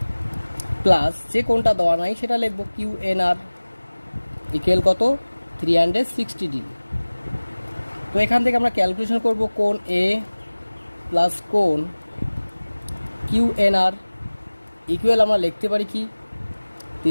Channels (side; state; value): both; inverted; correlation -1.00